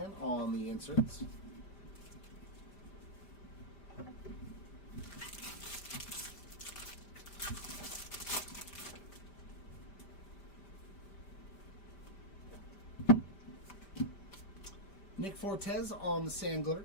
on the inserts. Nick Fortes on the sand glitter.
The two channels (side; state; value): right; late; 5.0 ms